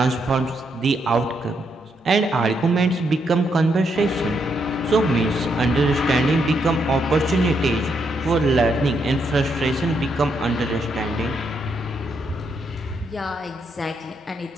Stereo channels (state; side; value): normal; both; correlation 0.78